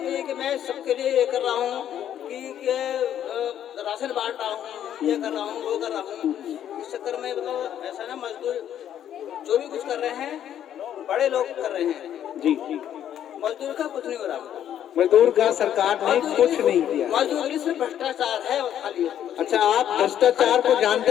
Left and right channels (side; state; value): right; quieter; 10.4 dB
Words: है कि मैं सबके लिए ये कर रहा हूँ कि राशन बांट रहा हूँ, ये कर रहा हूँ, वो कर रहा हूँ। इस चक्कर में मतलब ऐसा ना, मजदूर जो भी कुछ कर रहे हैं बड़े लोग कर रहे हैं जी, मजदूर का कुछ नहीं हो रहा। मजदूर का सरकार ने कुछ नहीं किया। मजदूरी से भ्रष्टाचार है खाली। अच्छा, आप भ्रष्टाचार को जानते